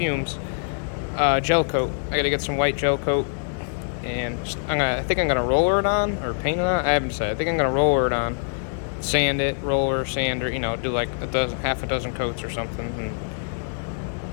Gel coat. I gotta get some white gel coat. And I think I'm gonna roller it on, or paint it on. I haven't decided. I think I'm gonna roller it on. Sand it, roller, sander, you know, do like half a dozen coats or something.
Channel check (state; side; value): silent; right; digital silence